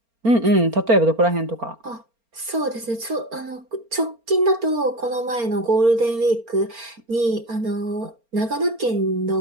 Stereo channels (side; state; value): left; late; 4.3 ms